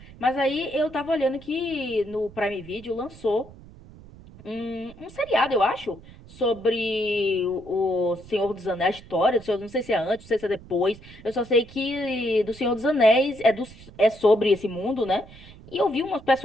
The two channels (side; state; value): right; noise; rumble, 20 dB below the sound